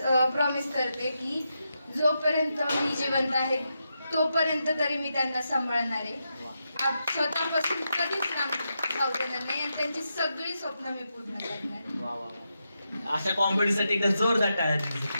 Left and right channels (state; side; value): inverted; both; correlation -0.85